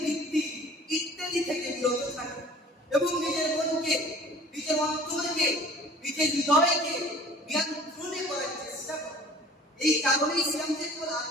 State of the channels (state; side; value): normal; both; correlation 0.48